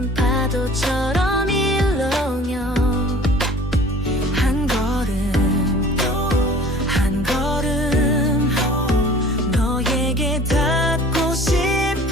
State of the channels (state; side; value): normal; both; correlation 0.47